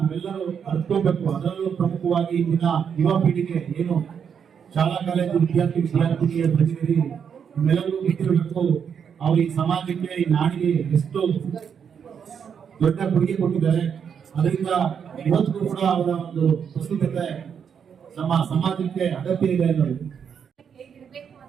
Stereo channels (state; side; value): quieter; left; 7.3 dB